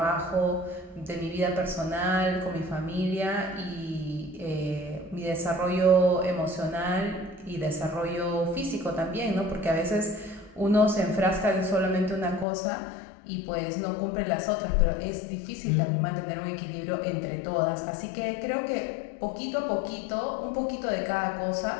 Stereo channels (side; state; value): right; drops out; at 12.5 s